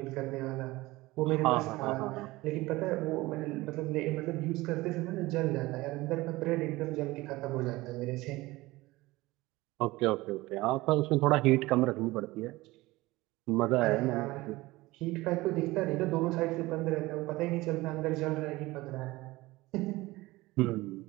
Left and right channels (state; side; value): quieter; left; 19.8 dB